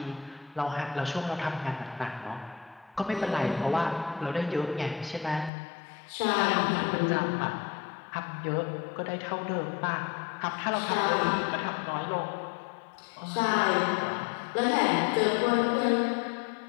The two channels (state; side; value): drops out; right; at 5.5 s